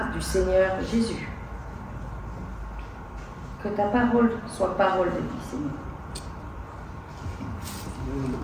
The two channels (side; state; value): both; identical; correlation 1.00